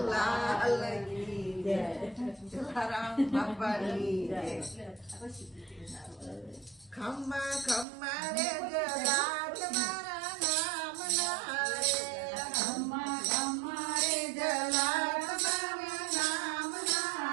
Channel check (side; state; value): left; drops out; at 7.9 s